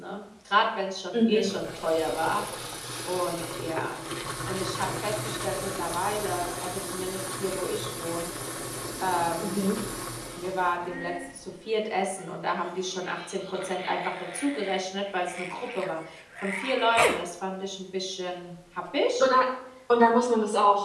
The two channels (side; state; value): both; identical; correlation 1.00